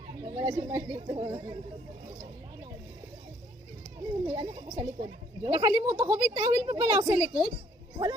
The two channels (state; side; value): normal; both; correlation 0.63